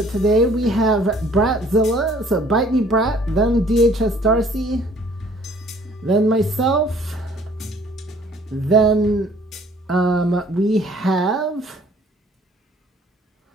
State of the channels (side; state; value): both; normal; correlation 0.57